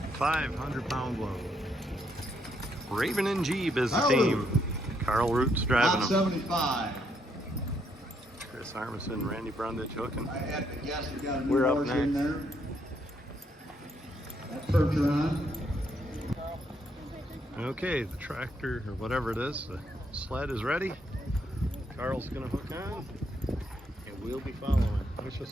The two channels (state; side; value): normal; both; correlation 0.75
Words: pound load. Raven and Jeeb is the team. Carl Root's driving them. 75. Chris Armisen, Randy Brundage hooking. I had to guess we got a new We're up horse in next. there. That Percheron. Okay, the tractor or whatever it is, the sled is ready. Carl's gonna hook on, and we'll be following. Wish